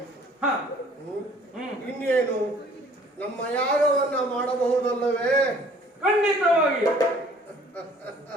ಇನ್ನೇನು ನಮ್ಮ ಯಾಗವನ್ನ ಮಾಡಬಹುದಲ್ಲವೇ? ಹಾಗೆ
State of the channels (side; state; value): both; normal; correlation 0.55